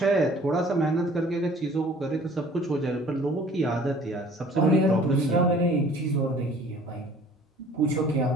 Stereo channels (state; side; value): normal; both; correlation 0.51